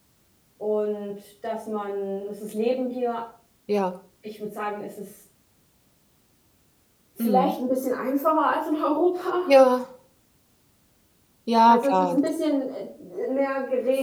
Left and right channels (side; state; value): both; identical; correlation 1.00